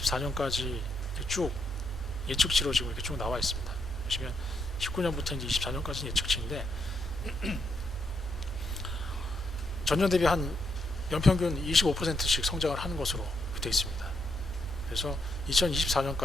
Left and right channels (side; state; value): both; normal; correlation 0.78